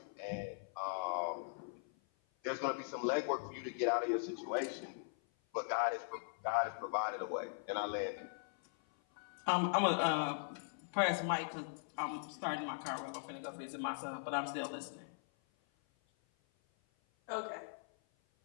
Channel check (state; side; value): silent; right; 51 dB below the other